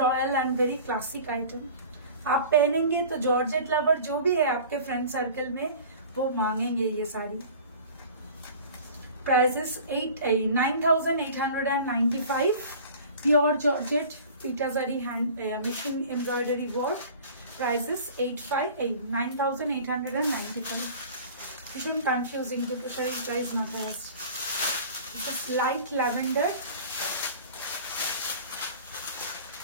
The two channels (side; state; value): both; inverted; correlation -0.42